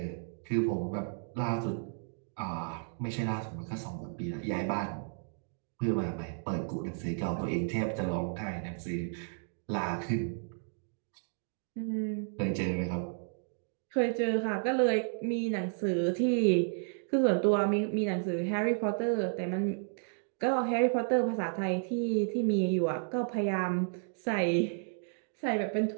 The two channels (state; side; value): silent; left; 56 dB below the other